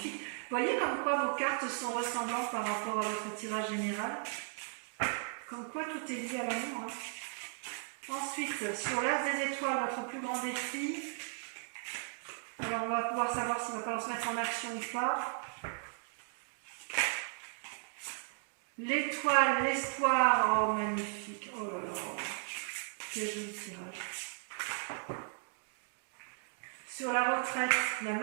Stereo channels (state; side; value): silent; left; 54 dB below the other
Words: Vous voyez comme quoi vos cartes sont ressemblantes par rapport à votre tirage général? Comme quoi tout est lié à l'amour. Hein. Ensuite, sur l'as des étoiles, votre plus grand défi. Alors, on va pouvoir savoir s'il va falloir se mettre en action ou pas. L'étoile, l'espoir. Oh, magnifique. Oh là là. Quel joli tirage. Sur la retraite, la